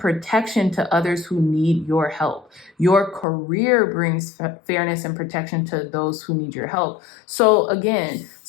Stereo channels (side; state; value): right; drops out; at 3.2 s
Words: to others who need your help. Your career brings fairness and protection to those who need your help. So again,